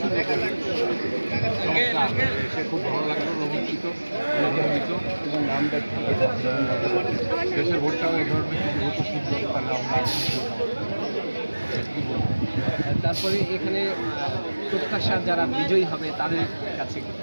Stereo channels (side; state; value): both; inverted; correlation -1.00